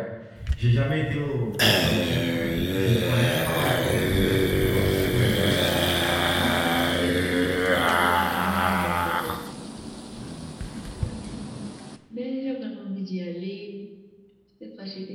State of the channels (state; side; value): identical; both; correlation 1.00